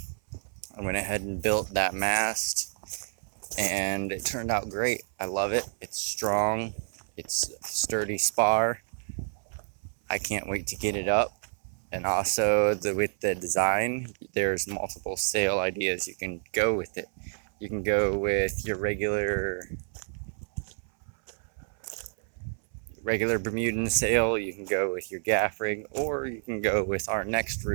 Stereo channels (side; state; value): left; silent; 59 dB below the other